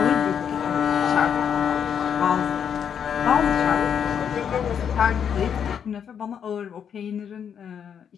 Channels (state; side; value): quieter; right; 7.9 dB